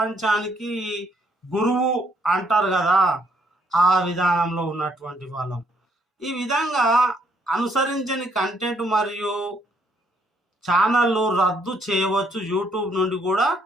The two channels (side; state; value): both; normal; correlation 0.70